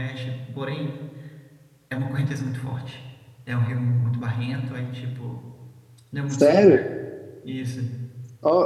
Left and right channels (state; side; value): identical; both; correlation 1.00